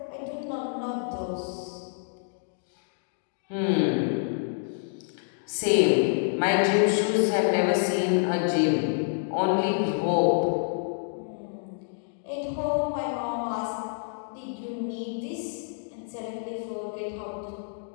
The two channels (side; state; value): right; silent; digital silence